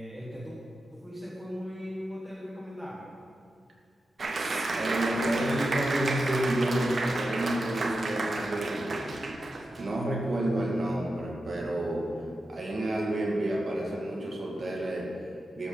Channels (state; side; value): normal; both; correlation 0.90